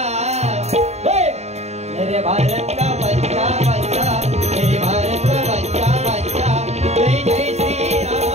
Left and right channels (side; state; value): left; late; 0.32 ms